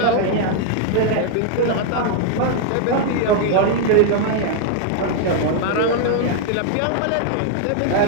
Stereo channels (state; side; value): different; both; correlation 0.00